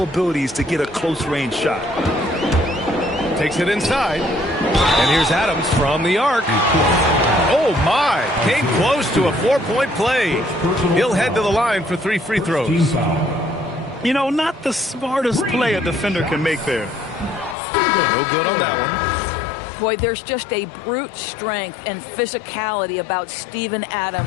abilities to get a close-range shot. Takes it inside. And here's Adams from the arc. Oh, my. Came close to a 4-point play. He'll head to the line for 3 free throws. You know, not the smartest play a defender can make there. No good on that one. Boy, there's just a brute strength and physicality about Steven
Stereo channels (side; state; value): right; drops out; at 17.6 s